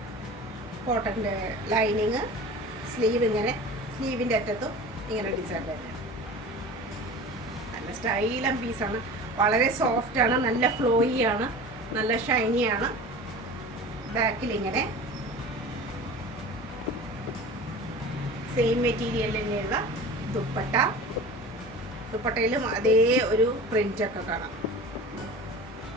കോട്ടൻ്റെ ലൈനിങ്, സ്ലീവ് ഇങ്ങനെ, സ്ലീവിൻ്റെ അറ്റത്തും ഇങ്ങനെ ഡിസൈൻ തന്നെ. നല്ല സ്റ്റൈലൻ പീസാണ്, വളരെ സോഫ്റ്റാണ്, നല്ല ഫ്ലോയി ആണ്, നല്ല ഷൈനിയാണ്. ബാക്കിൽ ഇങ്ങനെ സെയിം മെറ്റീരിയൽ തന്നെയുള്ള ദുപ്പട്ട. ദുപ്പട്ടയിലും അതേ ഒരു പ്രിൻ്റൊക്കെ കാണാം.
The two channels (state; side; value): normal; both; correlation 0.36